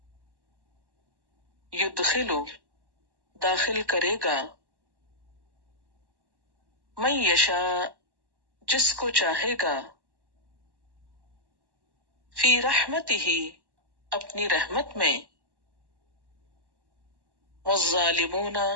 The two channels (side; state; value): left; late; 1.1 ms